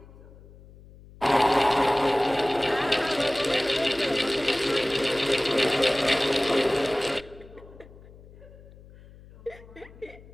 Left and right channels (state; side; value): noise; left; hum, 21 dB below the sound